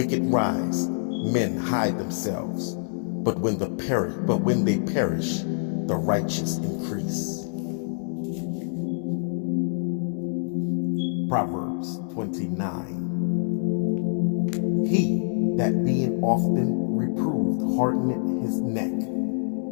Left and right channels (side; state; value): right; silent; 61 dB below the other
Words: rise, men hide themselves, but when they perish, the righteous increase. Proverbs 29. He that being often reproved hardeneth his neck